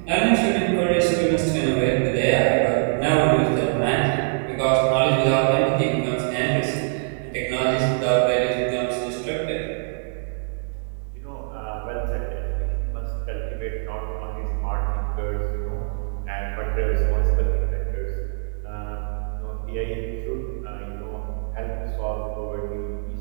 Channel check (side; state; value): left; silent; digital silence